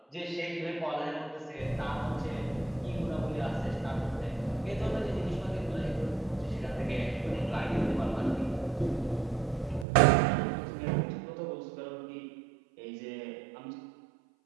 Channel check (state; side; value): drops out; left; at 9.9 s